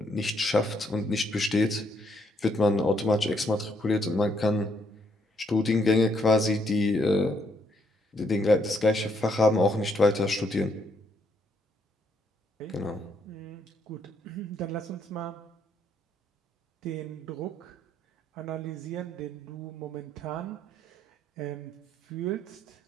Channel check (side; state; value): both; normal; correlation 0.72